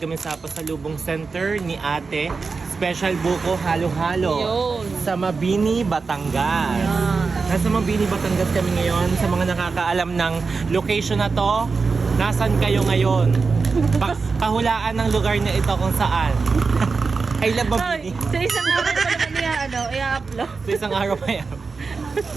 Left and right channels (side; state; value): left; quieter; 4.6 dB